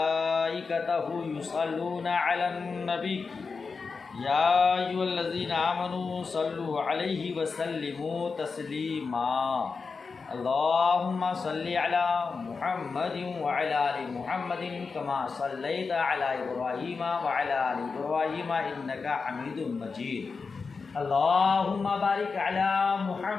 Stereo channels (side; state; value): right; quieter; 4.8 dB